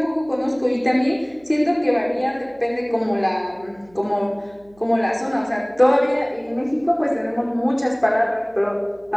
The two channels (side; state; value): right; noise; hum, 29 dB below the sound